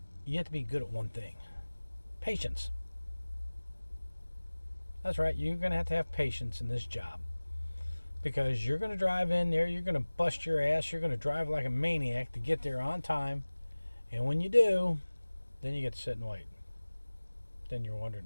you have to be good at one thing. Patience. That's right, you're going to have patience in this job, because you're going to drive in there, you're going to bust your ass, you're going to drive like a maniac to get there on time, and when you do, then you get to sit and wait. Then you're wondering,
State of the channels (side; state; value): both; inverted; correlation -1.00